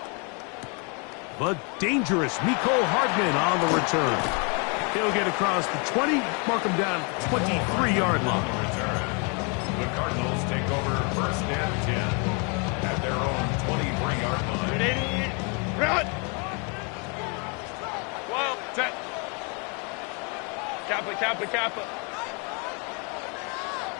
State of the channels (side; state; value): right; quieter; 34.8 dB